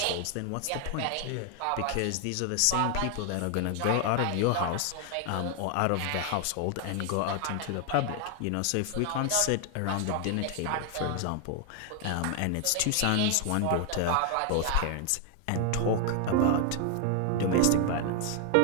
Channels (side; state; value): both; different; correlation 0.00